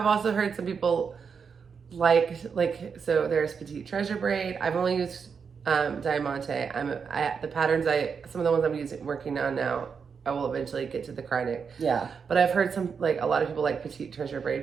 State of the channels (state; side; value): quieter; left; 6.1 dB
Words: also heard some people so there's Petite Treasure Braid. I've only used Diamante. The patterns some of the ones I'm working on now, I will eventually get to the Krynic. Yeah. But I've heard a lot of people like Petite Treasure